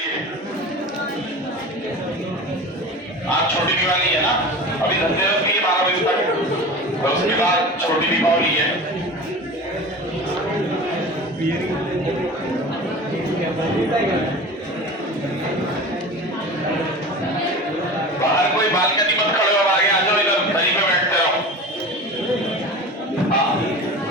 आज छोटी दिवाली है ना, अभी धनतेरस भी है 12 बजे तक, और उसके बाद छोटी दीपावली है। बाहर कोई बालकनी मत खड़े हो, आगे आ जाओ, इधर दरी पे बैठते रहो। हाँ,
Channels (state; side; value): normal; both; correlation 0.34